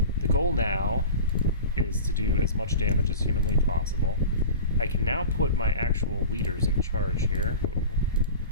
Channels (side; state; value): both; inverted; correlation -0.35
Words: the goal now is to do as much damage as humanly possible. I can now put my actual leaders in charge here. Ooh.